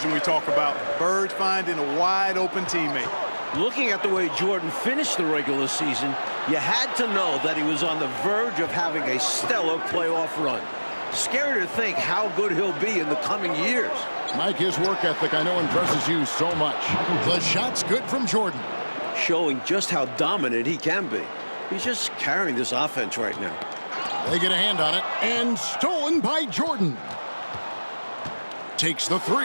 we talk about. Bird finding a wide-open teammate. Looking at the way Jordan finished the regular season, you had to know that he was on the verge of having a stellar playoff run. Scary to think how good he'll be in the coming years. Mike, his work ethic I know impresses you so much. The shot's good from Jordan. Showing just how dominant he can be. He's just carrying this offense right now. They get a hand on it, and stolen by Jordan. Takes the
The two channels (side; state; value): both; inverted; correlation -1.00